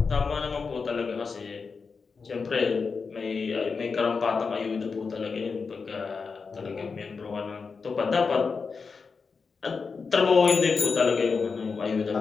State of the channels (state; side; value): quieter; right; 5.0 dB